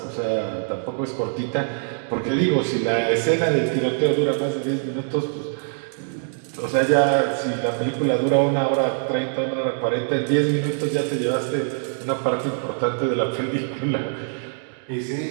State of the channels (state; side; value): silent; left; digital silence